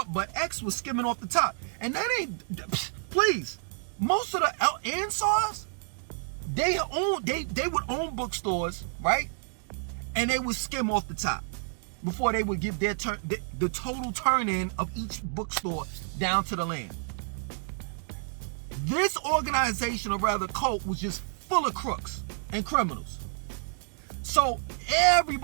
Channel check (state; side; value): silent; left; digital silence